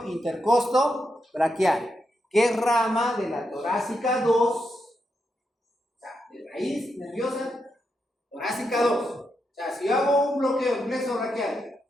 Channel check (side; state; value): both; normal; correlation 0.84